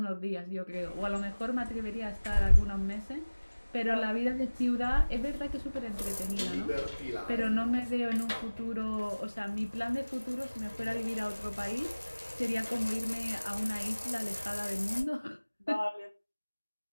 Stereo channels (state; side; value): inverted; both; correlation -1.00